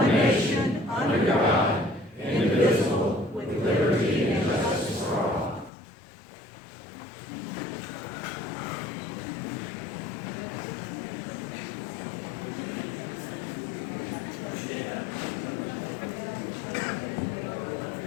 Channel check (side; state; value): right; drops out; at 5.7 s